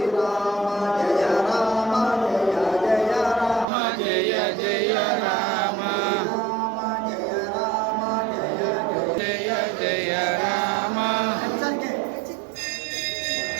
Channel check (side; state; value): left; drops out; at 3.7 s